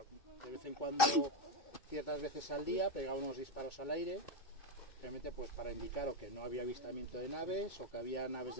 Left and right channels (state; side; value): late; right; 2.6 ms